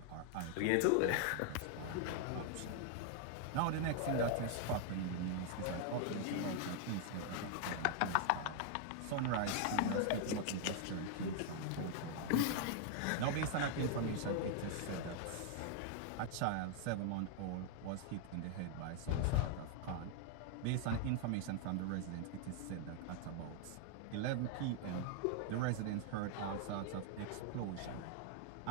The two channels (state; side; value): different; both; correlation 0.00